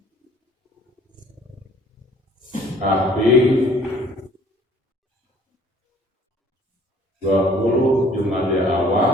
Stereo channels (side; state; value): both; normal; correlation 0.56